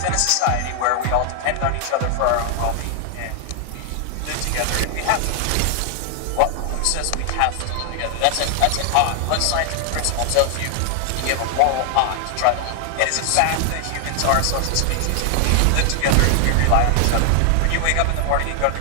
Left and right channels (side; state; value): both; different; correlation 0.00